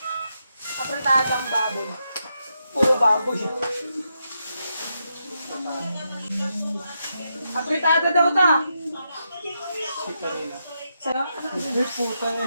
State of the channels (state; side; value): inverted; both; correlation -0.83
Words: Apretadang baboy. Puro baboy. Apretada daw ta. Sa'yo? Ay, puta